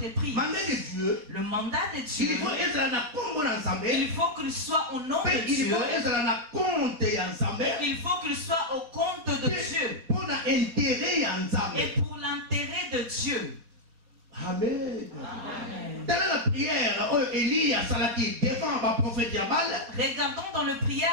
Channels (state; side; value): late; left; 4.2 ms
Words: Le mandat de Dieu, il faut qu'il soit au nom de Dieu. Il faut qu'il soit au compte de Dieu et pour l'intérêt de Dieu. Amen. Telle est la prière Élie a salati devant le prophète Baal. Regardons dans la